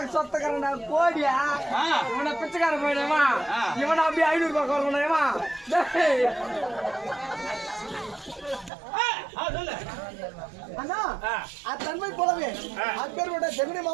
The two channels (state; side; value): drops out; left; at 8.7 s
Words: சொத்தக்காரன் கோடியா இவனை பிச்சைக்கார போயிடுமா? இவனை அப்படியே 500 ரூபாய் கொடுக்கணுமா? அண்ணா அத்தன்மை போலவே அக்பரோட ஜெகனி